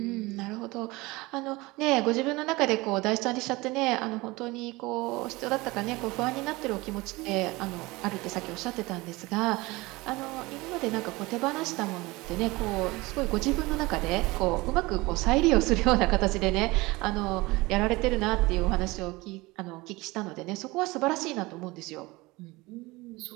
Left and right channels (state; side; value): quieter; left; 22.1 dB